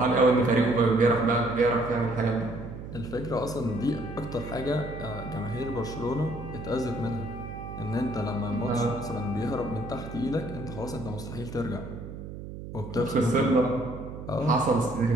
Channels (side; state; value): right; noise; hum, 10 dB below the sound